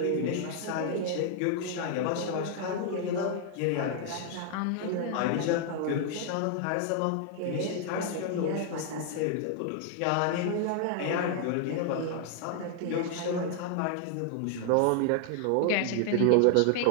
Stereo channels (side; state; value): both; different; correlation 0.00